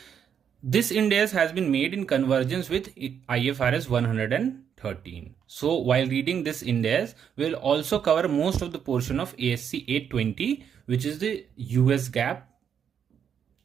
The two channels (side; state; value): left; quieter; 8.0 dB